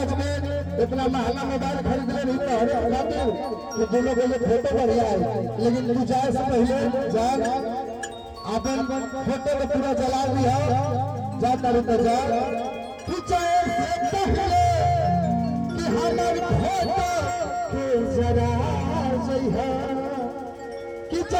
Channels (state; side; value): identical; both; correlation 1.00